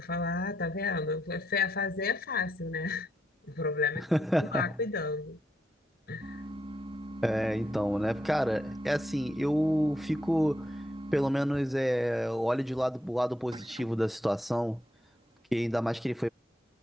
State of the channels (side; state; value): both; normal; correlation 0.80